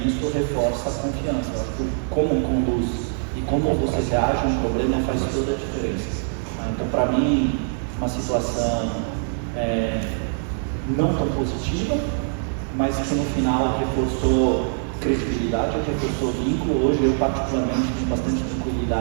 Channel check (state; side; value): silent; left; digital silence